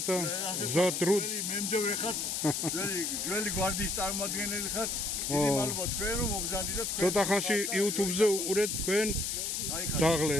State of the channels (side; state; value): left; noise; hiss, 1 dB below the sound